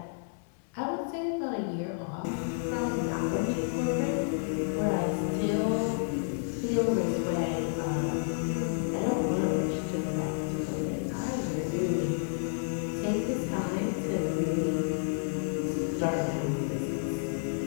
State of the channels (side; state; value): right; silent; digital silence